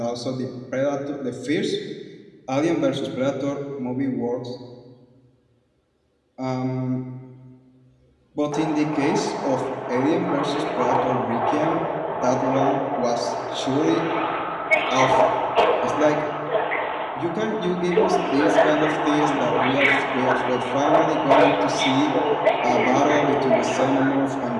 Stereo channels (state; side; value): identical; both; correlation 1.00